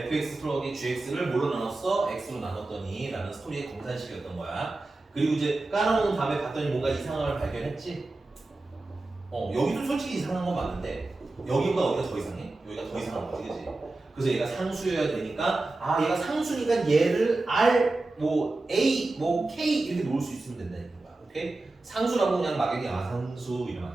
플러스 gx를 뭘로 나눴어? x로 나눴더니 라는 스토리의 검산식이었던 거야. 그리고 이제 깔아놓은 다음에 봤더니 뭔가 이상한 걸 발견했지? 여기도 솔직히 이상한 건 맞는데 여기보다 어디가 더 이상해? 여기가 더 이상한 거지, 그치? 그래서 얘가 상수여야 되니까 얘가 상수니까 얘를 R, 뭐 A, 뭐 K 이렇게 놓을 수 있으면 된다는 거야. 오케이? 상수라고 그냥 막연히 상수 이러면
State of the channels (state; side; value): quieter; left; 3.1 dB